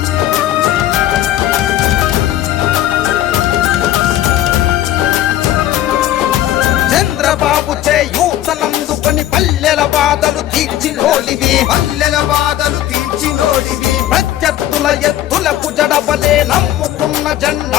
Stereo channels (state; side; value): quieter; right; 13.0 dB